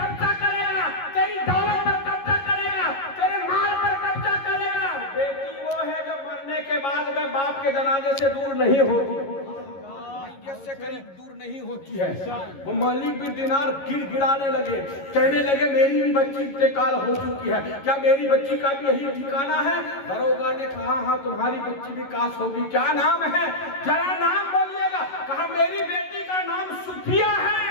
कब्जा करेगा, तेरी दौलत पर कब्जा करेगा, तेरे माल पर कब्जा करेगा। बेटी वो है जो मरने के बाद में बाप के जनाजे से दूर नहीं होती, से करीब दूर नहीं होती है। वो मालिक बिन दिनार गिड़गिड़ाने लगे, कहने लगे मेरी भी बच्ची इंतकाल हो चुकी है, क्या मेरी बच्ची का भी यही ठिकाना है? दरोगा ने कहा हाँ तुम्हारी बच्ची भी काश होगी। क्या नाम है? जरा नाम बोलिएगा। कहा मेरी बेटी का नाम सुफिया है।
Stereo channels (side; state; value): right; late; 11 ms